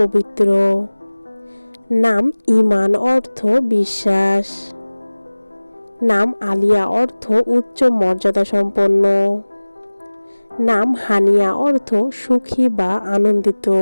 নাম ঈমান, অর্থ বিশ্বাস। নাম আলিয়া, অর্থ উচ্চ মর্যাদা সম্পন্ন। নাম হানিয়া, অর্থ সুখী বা আনন্দিত।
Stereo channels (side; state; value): both; inverted; correlation -1.00